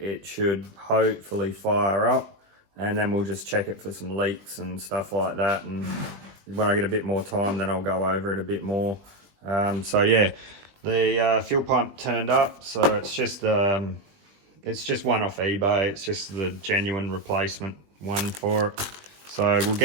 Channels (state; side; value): late; left; 20 ms